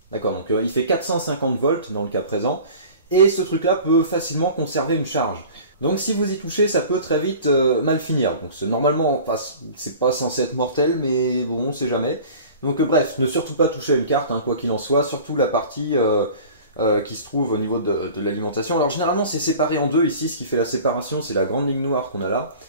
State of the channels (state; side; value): inverted; both; correlation -0.42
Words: D'accord, donc il fait 450 volts dans le cas présent, et ce truc-là peut facilement conserver une charge. Donc si vous y touchez, ça peut très vite mal finir. Donc normalement, enfin, c'est pas censé être mortel, mais bon, on sait jamais. Donc bref, ne surtout pas toucher à une carte, hein, quoi qu'il en soit, surtout la partie qui se trouve au niveau de l'alimentation. Alors généralement, c'est séparé en deux ici, ce qui fait la séparation, c'est la grande ligne noire qu'on a là.